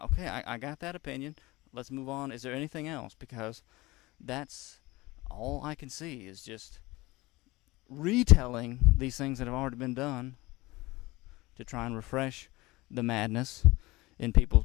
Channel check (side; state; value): right; quieter; 21.0 dB